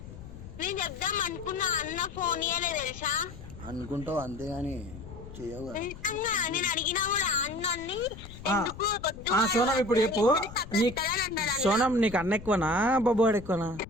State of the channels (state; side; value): noise; left; rumble, 14 dB below the sound